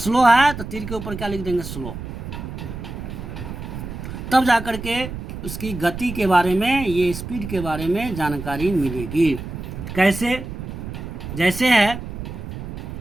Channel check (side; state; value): right; noise; rumble, 8 dB below the sound